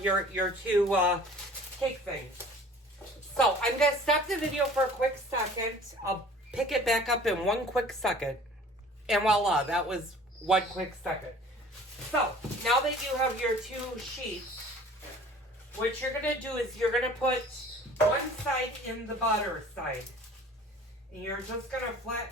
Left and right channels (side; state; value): both; normal; correlation 0.48